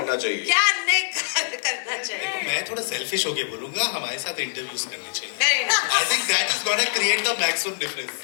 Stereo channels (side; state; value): right; silent; digital silence